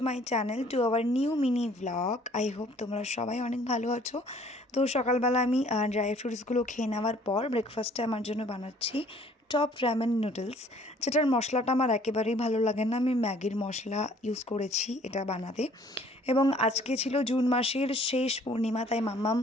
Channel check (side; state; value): both; normal; correlation 0.57